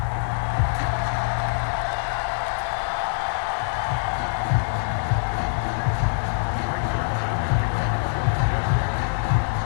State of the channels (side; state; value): right; silent; 62 dB below the other